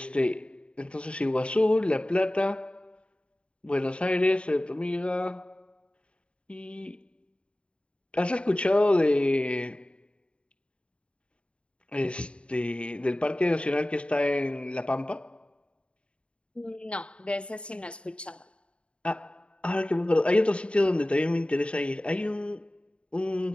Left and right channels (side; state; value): right; late; 0.057 ms